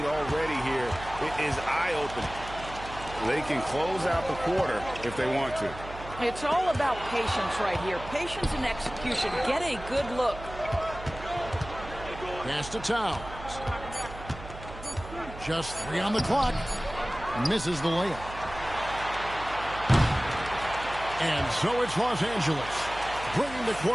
already here is eye-opening. They can close out the quarter if they want to. It's all about patience right here. Patience and execution. Get a good look. Pass to Towns. Just 3 on the clock. Misses the layup. And so it's Los Angeles, bringing the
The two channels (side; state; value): right; noise; hum, 13 dB below the sound